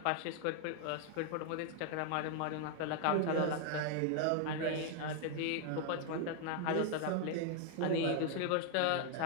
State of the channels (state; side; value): different; both; correlation 0.00